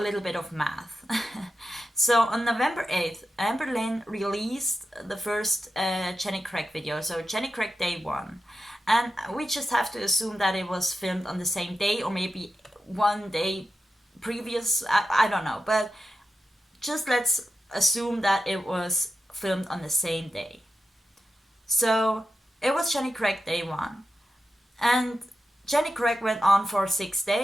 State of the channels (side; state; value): both; normal; correlation 0.90